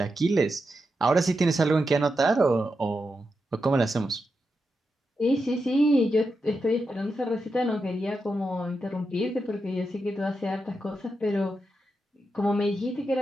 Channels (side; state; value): both; normal; correlation 0.87